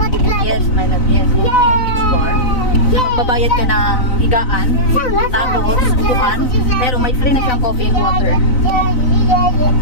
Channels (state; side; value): late; right; 4.0 ms